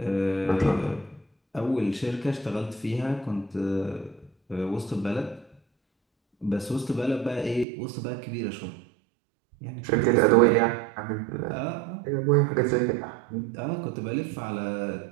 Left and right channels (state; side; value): drops out; left; at 7.7 s